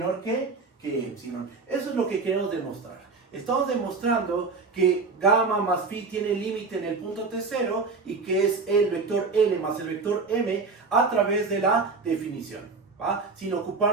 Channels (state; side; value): quieter; left; 4.3 dB